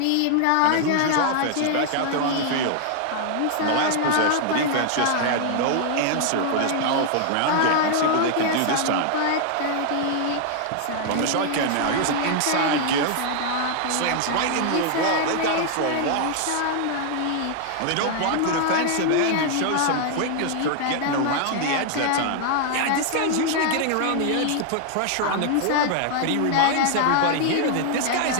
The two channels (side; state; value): both; different; correlation 0.00